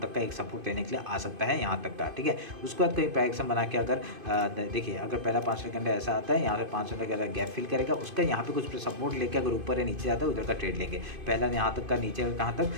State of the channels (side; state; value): left; late; 2.5 ms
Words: का एक सपोर्ट लेने के लिए आ सकता है, यहाँ तक का, ठीक है। उसके बाद कहीं प्राइक्शन बना के अगर देखिए अगर पहला 5 मिनट ऐसा आता है, यहाँ से 5 मिनट का गैप फिल करेगा, उसका यहाँ पे कुछ सपोर्ट लेके अगर ऊपर या नीचे जाता है उधर का ट्रेड लेंगे। पहला यहाँ तक का, नीचे कहाँ तक